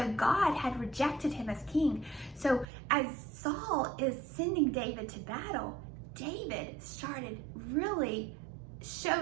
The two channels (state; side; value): drops out; left; at 2.7 s